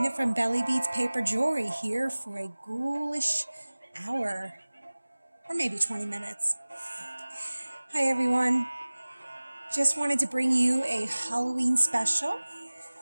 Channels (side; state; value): both; inverted; correlation -1.00